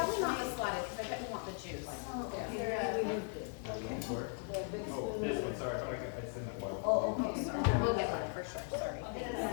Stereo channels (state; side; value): quieter; right; 39.7 dB